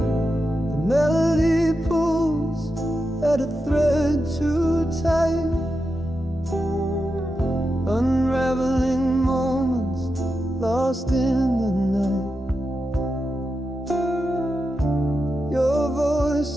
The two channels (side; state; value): both; normal; correlation 0.88